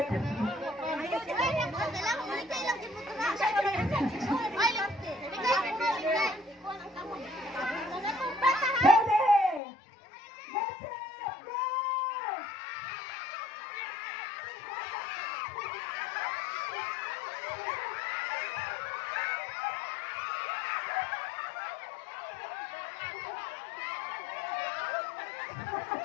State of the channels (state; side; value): drops out; right; at 9.6 s